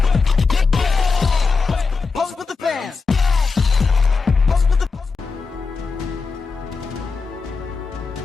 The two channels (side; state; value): right; quieter; 4.6 dB